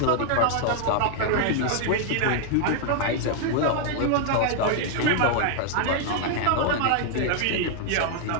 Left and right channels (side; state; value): both; different; correlation 0.00